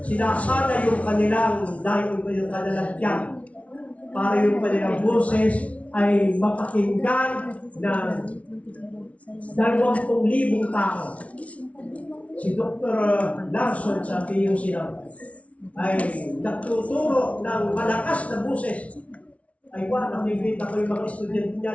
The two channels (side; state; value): right; late; 0.065 ms